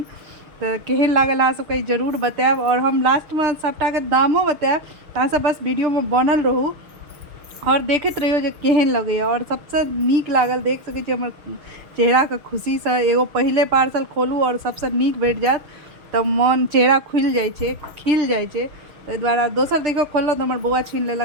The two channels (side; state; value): left; late; 6.5 ms